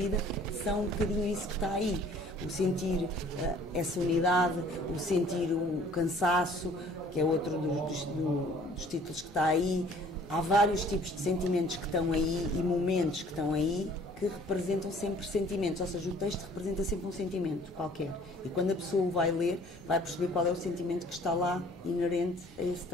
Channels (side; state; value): both; normal; correlation 0.54